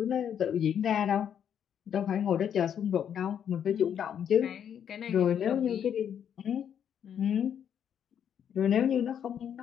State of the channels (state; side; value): quieter; right; 8.8 dB